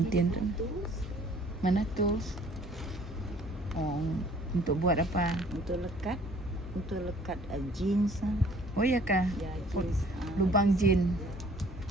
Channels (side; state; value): both; normal; correlation 0.55